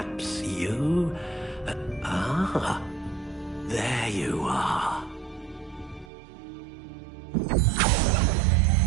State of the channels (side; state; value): left; drops out; at 6.1 s